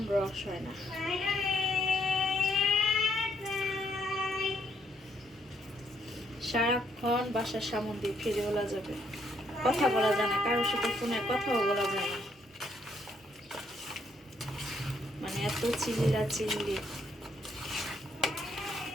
রস হয় না। সারাক্ষণ বাসার সামনে দিয়ে ফিরে বলা যাবে, কথা বলা যায় না, কারোর সাথে ফোনে কথাও বলা যায় না, মানে এত চিল্লা চিল্লি।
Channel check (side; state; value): both; normal; correlation 0.72